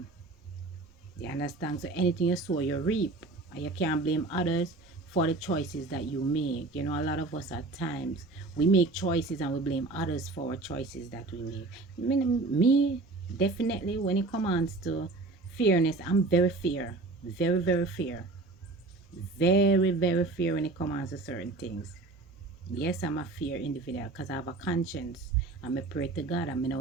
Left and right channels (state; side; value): quieter; left; 3.3 dB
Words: You understand? So anything you sow, you reap. And you can't blame others for the choices that you make. A lot of us at times, we make choices and we blame others for our choices that we make. Me definitely, when it comes to fairness, I'm very fair. Very, very fair. Very, very fair when it comes to certain things. Yes, I'm a fair individual because I have a conscience. I'm a pray to God. I mean, I